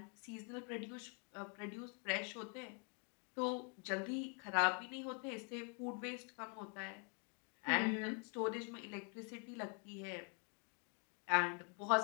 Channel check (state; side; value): quieter; right; 37.3 dB